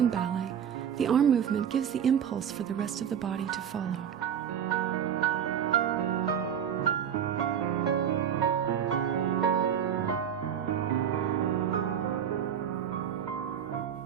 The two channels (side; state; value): left; quieter; 8.5 dB